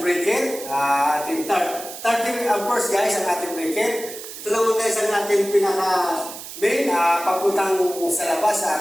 breaker. Ating 30 amperes guys ang ating breaker. Ito naman guys ang ating pinaka main papuntang sa labas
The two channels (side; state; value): right; noise; hiss, 12 dB below the sound